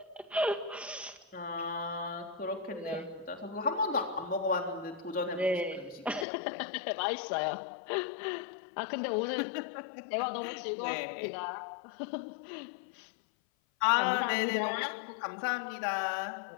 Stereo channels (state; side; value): drops out; right; at 6.2 s